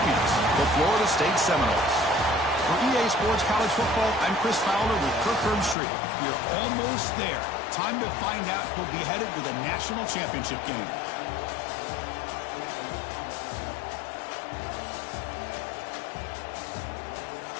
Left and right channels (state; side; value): drops out; right; at 5.8 s